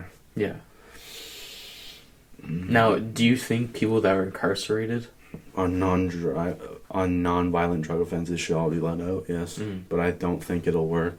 Yeah. Mm-hmm. Now, do you think people that are incarcerated on non-violent drug offenses should all be let out? Yes. Mm-hmm. But I don't think it'll work.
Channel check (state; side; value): identical; both; correlation 1.00